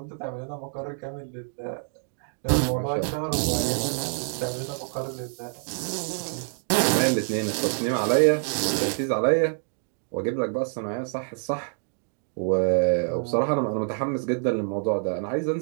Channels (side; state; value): left; silent; digital silence